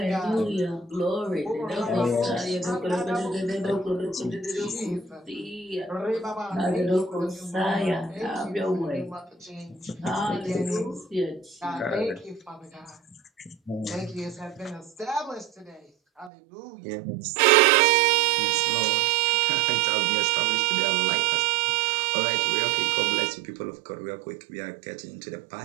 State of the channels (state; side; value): drops out; left; at 16.3 s